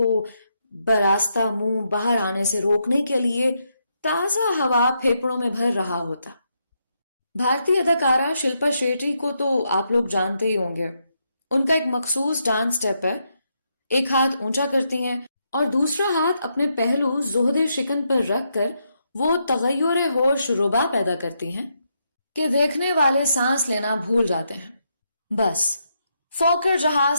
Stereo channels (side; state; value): both; inverted; correlation -0.80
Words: براستہ منہ باہر آنے سے روکنے کے لیے تازہ ہوا پھیپڑوں میں بھر رہا ہوتا. بھارتی اداکارہ شلپا شیٹی کو تو آپ لوگ جانتے ہی ہوں گے. ان کا ایک مخصوص ڈانس سٹیپ ہے. ایک ہاتھ اونچا کرتی ہیں اور دوسرا ہاتھ اپنے پہلو زہد شکن پر رکھ کر وہ تغیر ہوش ربا پیدا کرتی ہیں کہ دیکھنے والے سانس لینا بھول جاتے ہیں۔ بس فوکر